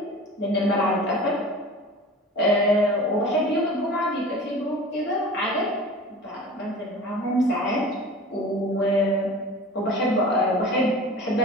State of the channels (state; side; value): normal; both; correlation 0.38